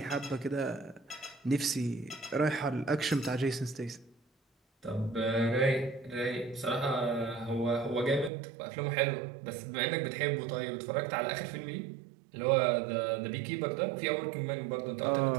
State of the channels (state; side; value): drops out; left; at 8.3 s